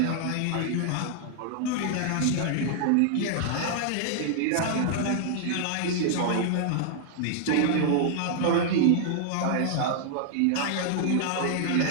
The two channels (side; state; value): both; different; correlation -0.01